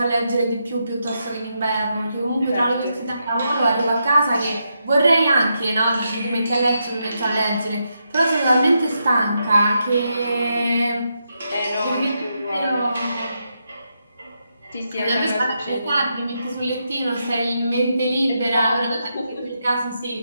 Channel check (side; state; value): both; inverted; correlation -0.83